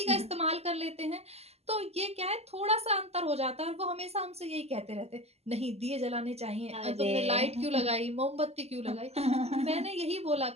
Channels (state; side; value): late; left; 0.30 ms